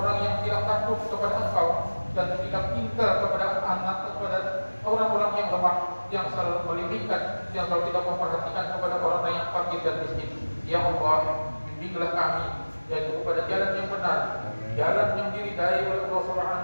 yang tidak takut kepada Engkau dan tidak tinggal kepada anak, kepada orang-orang yang lemah, yang selalu melimitkan, yang selalu tidak memperhatikan kepada orang yang fakir dan miskin. Ya Allah, bimbinglah kami yaitu kepada jalan yang benar, jalan yang diridai oleh Allah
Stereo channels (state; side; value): inverted; both; correlation -1.00